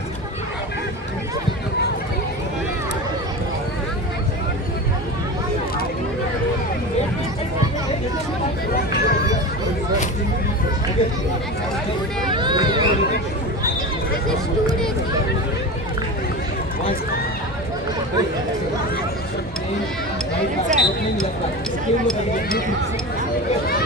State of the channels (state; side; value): normal; both; correlation 0.27